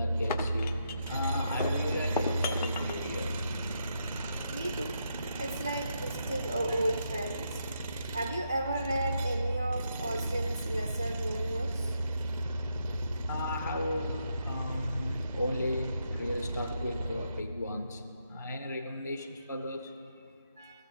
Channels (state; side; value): inverted; both; correlation -0.79